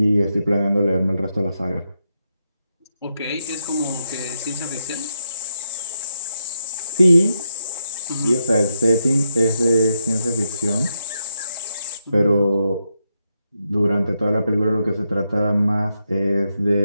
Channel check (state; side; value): inverted; both; correlation -0.83